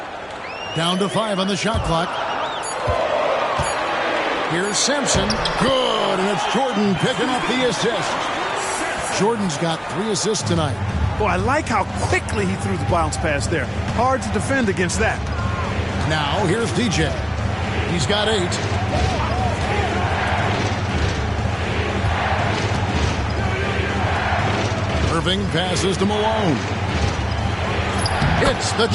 Down to 5 on the shot clock. Here's Sampson. Good, and it's Jordan picking up the assist. Jordan's got 3 assists tonight. Boy, I like how quickly he threw the bounce pass there. Hard to defend against that. Now, here's DJ. He's got 8. Irving passes to Malone. Hits the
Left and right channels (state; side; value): identical; both; correlation 1.00